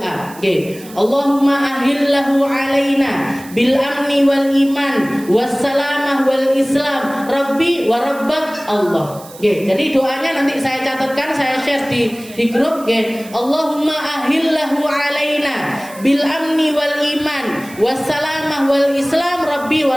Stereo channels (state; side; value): noise; right; hiss, 19 dB below the sound